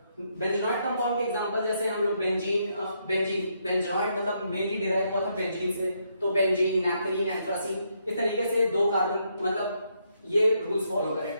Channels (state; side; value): inverted; both; correlation -0.76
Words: बेंजोनॉइड कंपाउंड के एग्जांपल जैसे हम लोग बेंजोनॉइड मतलब मेनली डिराइव हुआ था बेंजीन से, तो बेंजीन, नैप्थलीन, एंथ्रासीन, इस तरीके से 2 कार्बन मतलब ये रूल्स फॉलो करें।